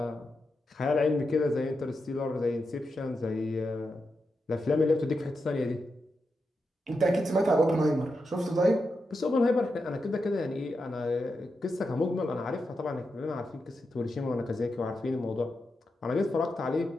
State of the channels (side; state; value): both; normal; correlation 0.87